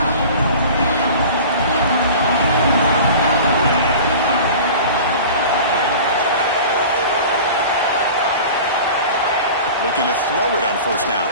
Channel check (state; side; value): inverted; both; correlation -0.38